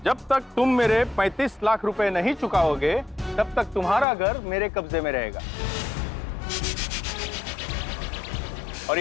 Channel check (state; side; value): drops out; right; at 4.0 s